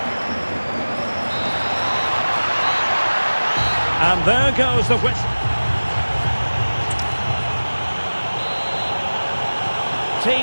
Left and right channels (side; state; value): both; inverted; correlation -1.00